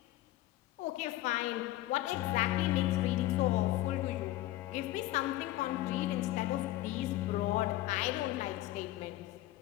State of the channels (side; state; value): right; quieter; 16.3 dB